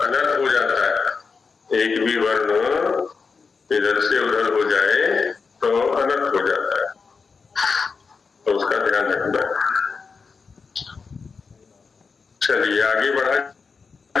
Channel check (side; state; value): right; quieter; 5.0 dB